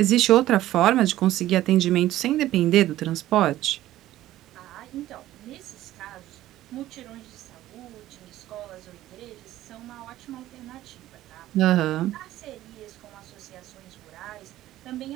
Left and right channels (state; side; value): quieter; left; 14.5 dB